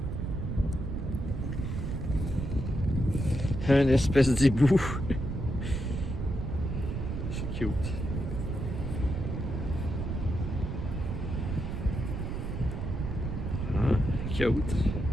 Un espèce d'hibou. C'est cute. Cute.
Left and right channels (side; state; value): right; noise; rumble, 3 dB below the sound